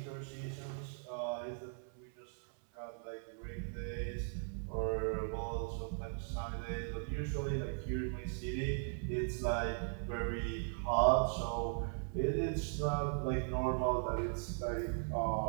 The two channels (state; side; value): silent; left; 52 dB below the other